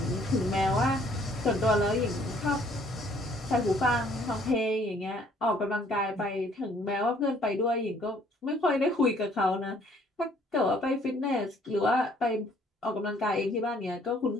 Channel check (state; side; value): normal; both; correlation 0.61